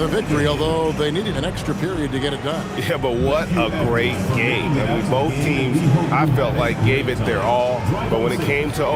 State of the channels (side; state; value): both; identical; correlation 1.00